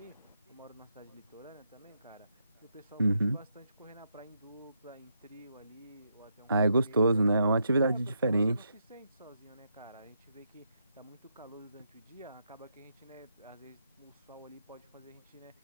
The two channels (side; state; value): both; inverted; correlation -0.80